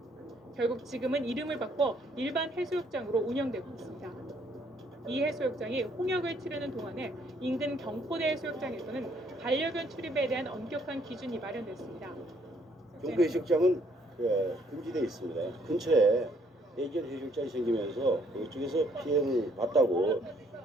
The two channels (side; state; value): both; normal; correlation 0.66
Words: 결국 지금은 이름을 바꿔 일반 해수욕장으로 운영되고 있습니다. 이 해수욕장이 홍역을 치르는 동안에 인근 경포대 해수욕장에서는 반려견 출입에 대한 엄격한 기준이 마련됐습니다. 경포 해수욕장은 금지되어 있습니다. 근처에 애견 해수욕장이 생기면서 이쪽에서 피해를 봤다고